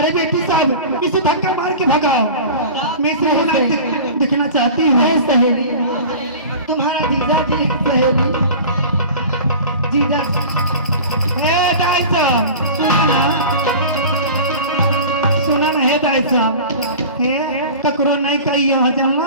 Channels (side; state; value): both; inverted; correlation -0.36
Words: बेटी साहब, इसे धक्का मार के भगाओ। मैं इसे होना देखना चाहती हूँ। नहीं सहेली, तुम्हारा जीजा की सहेली जीजा। हे दाई साहब, सुना ना हे दाई साहब, ककरो नहीं कही यहाँ